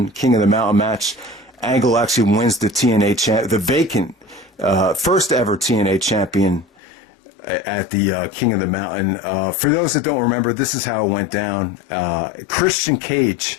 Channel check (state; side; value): drops out; right; at 6.7 s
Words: King of the Mountain match. Angle actually wins the TNA the vacant first ever TNA champion at the King of the Mountain. For those that don't remember, this is how it went down. Christian